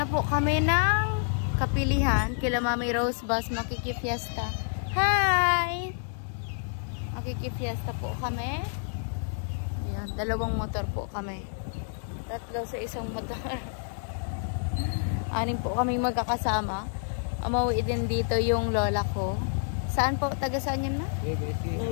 po kami ng kapilihan kila Mami Rose Bus makikifiesta. Hi! Makikifiesta po kami. Yan, 2 motor po kami. 3 sa isang motor. 6 po kaming magkakasama. Umuwi din dito yung lola ko. Saan po? Taga saan yun na?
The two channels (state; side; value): silent; right; 59 dB below the other